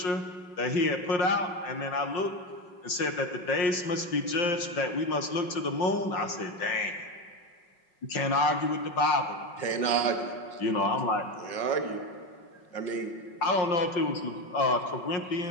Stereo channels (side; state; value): right; late; 5.6 ms